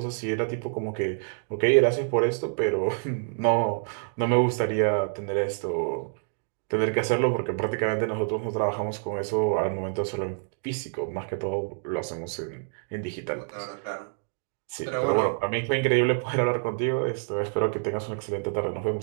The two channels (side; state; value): left; silent; digital silence